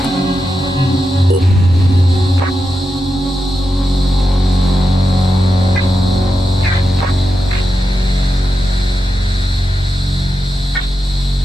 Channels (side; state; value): both; normal; correlation 0.89